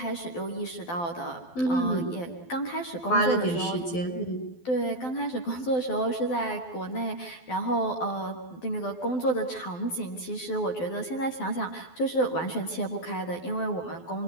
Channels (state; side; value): late; right; 12 ms